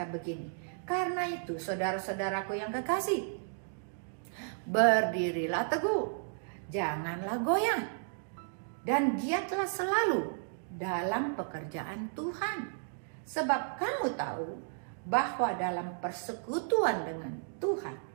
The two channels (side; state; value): left; silent; digital silence